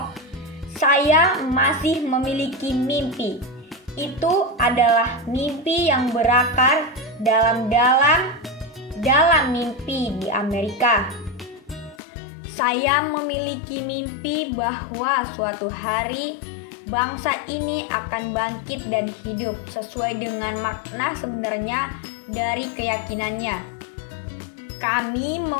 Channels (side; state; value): right; drops out; at 12.0 s